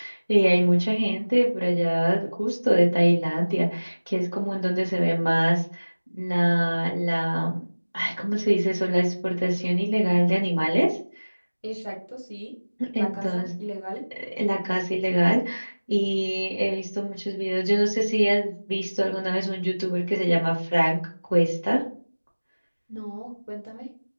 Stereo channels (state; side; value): inverted; both; correlation -1.00